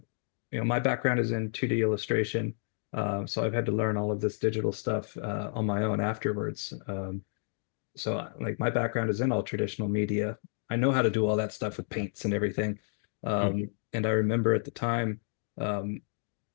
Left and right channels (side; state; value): right; silent; digital silence